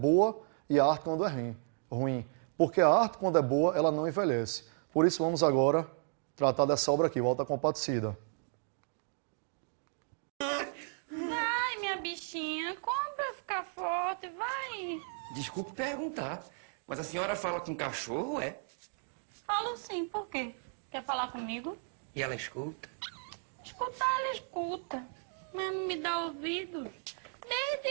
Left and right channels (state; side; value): silent; left; 55 dB below the other